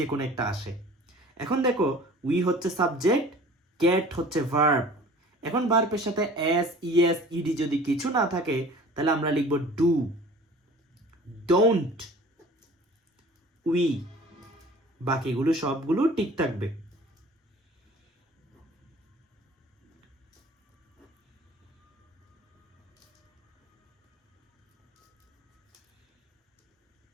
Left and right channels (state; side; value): normal; both; correlation 0.46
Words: কোনো একটা আসে। এখন দেখো উই হচ্ছে সাবজেক্ট, গেট হচ্ছে ভার্ব, এখন ভার্বের সাথে এস, ইএস, ইডি যদি কিছু না থাকে তাহলে আমরা লিখব ডু, ডোন্ট, উই। বাকিগুলো সবগুলো ঠিক থাকবে।